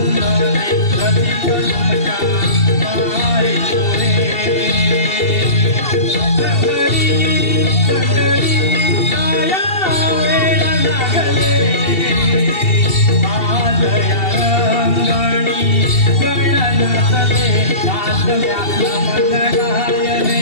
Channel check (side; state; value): right; late; 2.7 ms